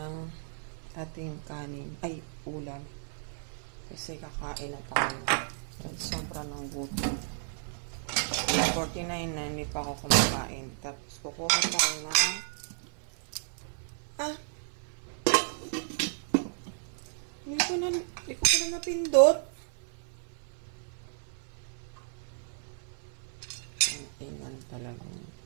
ating kanin, ay ulam. Kasi kakain na tayo. At sobra ng gutom. 49 na hindi pa ako kumakain. Tapos kukuha tayo na hindi ko na napindot. Ang ingan talagang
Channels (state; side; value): silent; left; 56 dB below the other